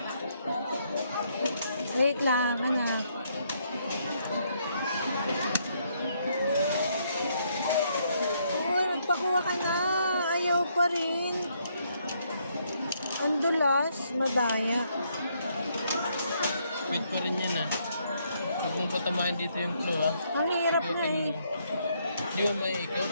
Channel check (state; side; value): inverted; both; correlation -0.73